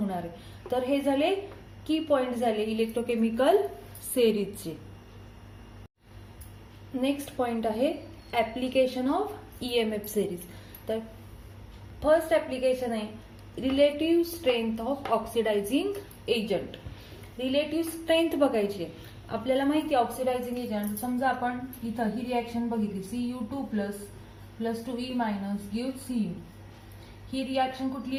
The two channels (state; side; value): identical; both; correlation 1.00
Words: आहे. तर हे झाले की पॉइंट झाले इलेक्ट्रोकेमिकल सिरीजचे. नेक्स्ट पॉइंट आहे ऍप्लिकेशन ऑफ EMF सिरीज. तर फर्स्ट ऍप्लिकेशन आहे relative strength of oxidising agent. Relative strength बघायची आहे आपल्याला माहिती आहे ऑक्सिडायझिंग एजंट. समजा आपण इथं ही रिॲक्शन बघितली Cu2 plus 2E minus give Cu. ही रिॲक्शन